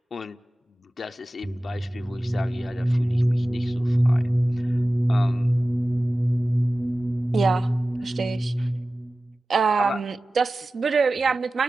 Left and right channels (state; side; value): normal; both; correlation 0.96